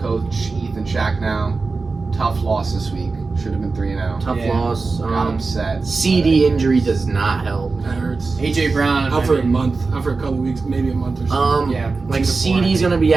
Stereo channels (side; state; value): left; quieter; 4.1 dB